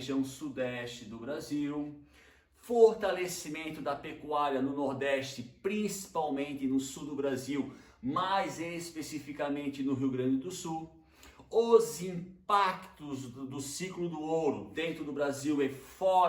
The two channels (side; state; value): both; identical; correlation 1.00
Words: sudeste do Brasil, fortalecimento da pecuária no Nordeste, principalmente no sul do Brasil, mais especificamente no Rio Grande do Sul, os impactos do ciclo do ouro dentro do Brasil e